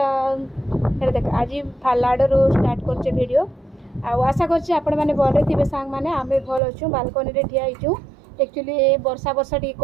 देख आज फालाडू स्टार्ट कर वीडियो आशा कर भल थे सांग मैंने आम भल अच्छु बालकनी रे ठिया होइछु एक्चुअली वर्षा वर्षा टी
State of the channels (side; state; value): left; drops out; at 6.6 s